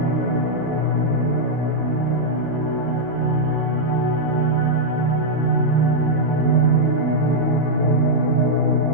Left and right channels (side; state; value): both; normal; correlation -0.03